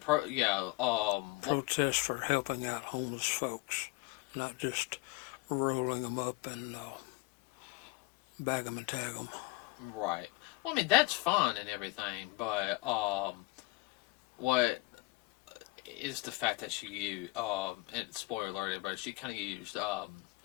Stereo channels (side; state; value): right; quieter; 23.8 dB